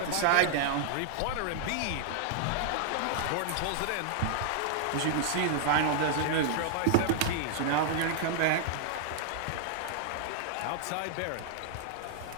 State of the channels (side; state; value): both; different; correlation -0.01